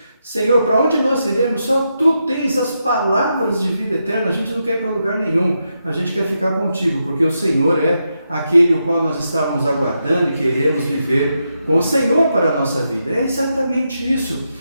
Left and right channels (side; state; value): both; inverted; correlation -0.85